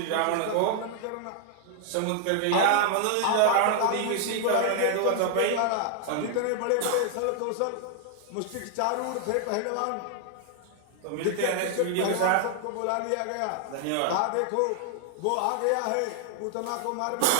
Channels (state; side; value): different; both; correlation 0.00